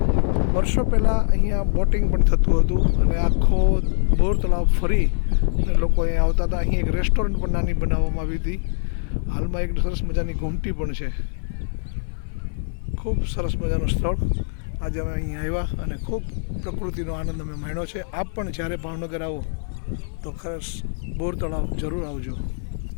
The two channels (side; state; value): right; silent; 56 dB below the other